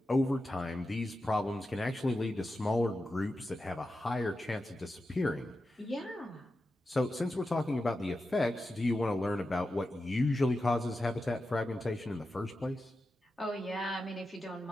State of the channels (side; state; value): both; normal; correlation 0.91